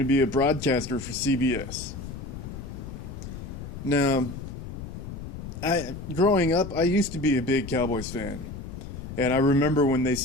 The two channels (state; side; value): noise; left; rumble, 10 dB below the sound